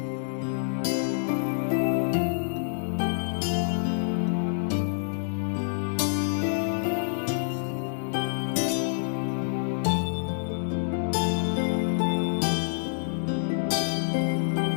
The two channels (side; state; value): right; silent; digital silence